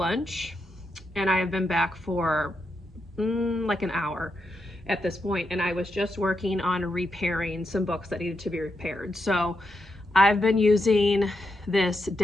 and I have been back for like an hour. at this point, and I was just working on repairing some books that needed to be repaired. So I've been using this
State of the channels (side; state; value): both; normal; correlation 0.84